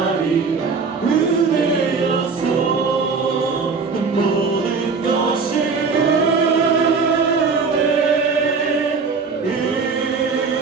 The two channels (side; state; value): left; quieter; 4.9 dB